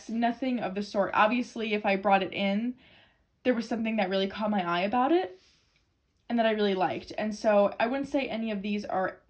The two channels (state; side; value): identical; both; correlation 1.00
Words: nothing of the sort. Obviously, if I brought it in, there was something that really caught my eye about it and that I really liked. And so I wouldn't say any of these are